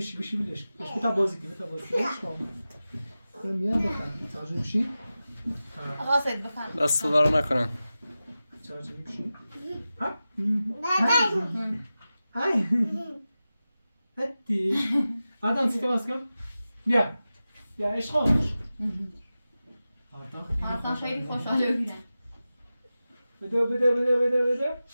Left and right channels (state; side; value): inverted; both; correlation -0.94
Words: بلش بش بتا بازی که میان بخوام تاجر بشی آقا سید بخوام دست دارو نکنن تاجر بشی ها های هتی آدم سیت باز کن بیا عشق خودش آرتان خیلی خوشحاله بودن بده